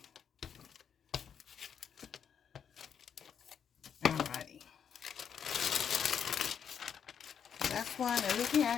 Alrighty. That's one, and we can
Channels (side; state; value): right; quieter; 7.8 dB